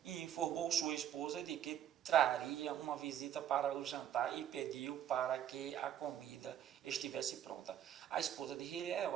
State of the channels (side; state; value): left; quieter; 10.4 dB